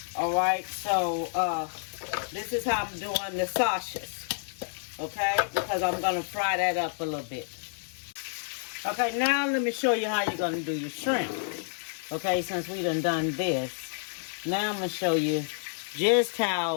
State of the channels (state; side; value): silent; right; digital silence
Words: All right, so this is how I'm doing the sausages. Okay, because I'm going to fry that up a little bit. Okay, now let me show you how you're going to do your shrimp. Okay, since we done this, now I'm going to show you just